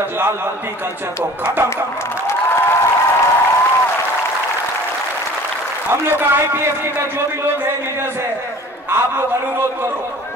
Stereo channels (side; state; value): both; normal; correlation 0.46